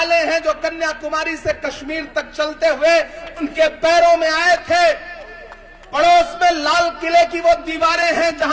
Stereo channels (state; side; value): identical; both; correlation 1.00